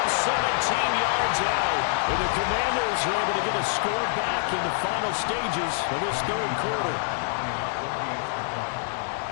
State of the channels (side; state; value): right; silent; digital silence